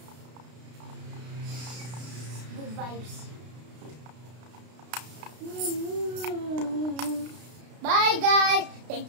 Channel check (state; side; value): late; left; 32 ms